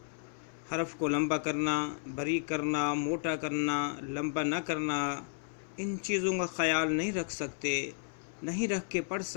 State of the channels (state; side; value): silent; right; 56 dB below the other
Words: حرف کو لمبا کرنا، باریک کرنا، موٹا کرنا، لمبا نہ کرنا، ان چیزوں کا خیال نہیں رکھ سکتے، نہیں رکھ کے پڑھ